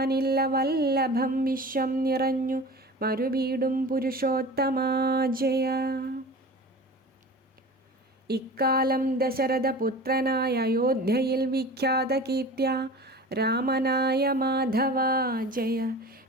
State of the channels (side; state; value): both; normal; correlation 0.36